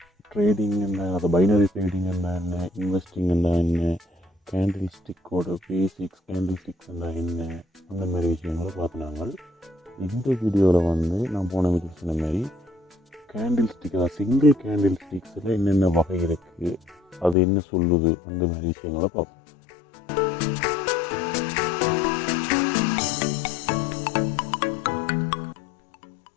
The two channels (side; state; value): right; drops out; at 17.4 s